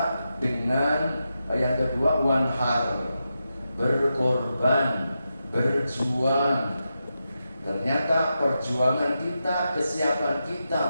dengan yang kedua wanhar, berkorban, berjuang. Ternyata perjuangan kita, kesiapan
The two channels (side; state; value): both; inverted; correlation -0.88